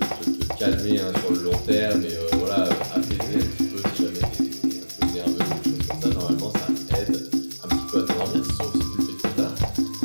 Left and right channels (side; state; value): both; inverted; correlation -1.00